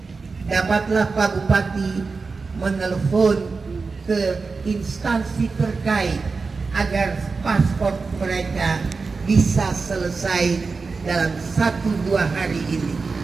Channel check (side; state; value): left; quieter; 4.4 dB